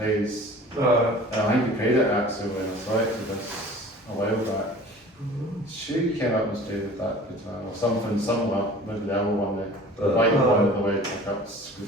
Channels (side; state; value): both; normal; correlation 0.44